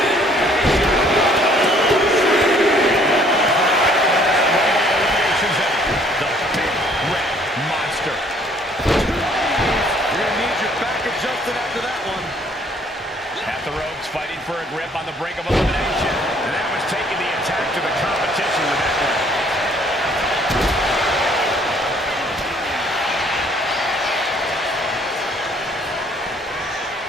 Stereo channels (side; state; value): both; normal; correlation 0.60